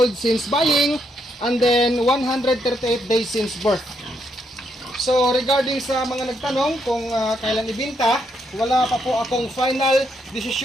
since buying and then 138 days since birth. So regarding sa mga nagtanong kung kailan ibenta, wala pa po akong final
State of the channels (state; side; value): normal; both; correlation 0.77